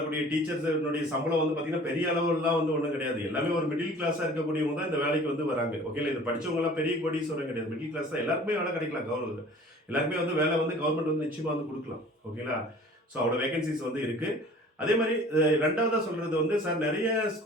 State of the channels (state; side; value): normal; both; correlation 0.47